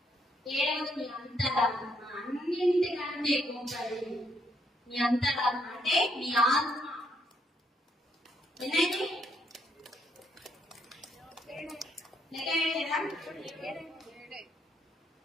ఏడవది మీ అంతరాత్మ. అన్నింటికంటే గొప్పది మీ అంతరాత్మ, అంటే మీ ఆత్మ. ఎన్నైతే లెక్క వేయలేదా?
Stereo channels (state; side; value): normal; both; correlation 0.73